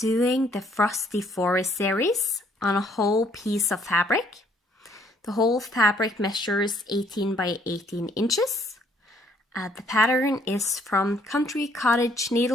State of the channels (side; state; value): both; normal; correlation 0.65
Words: the Frosty Forest series on a whole piece of fabric. The whole fabric measures 18 by 18 inches. The pattern is from Country Cottage